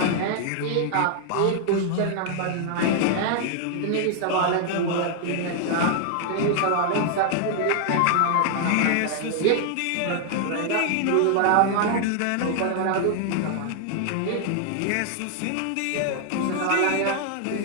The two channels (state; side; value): different; both; correlation 0.00